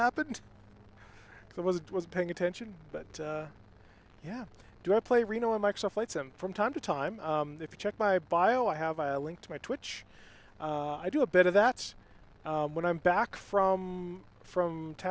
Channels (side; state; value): both; identical; correlation 1.00